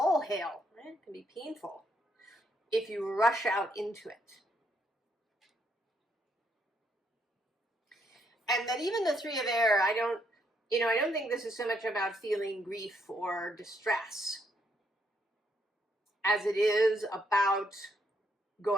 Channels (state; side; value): normal; both; correlation 0.74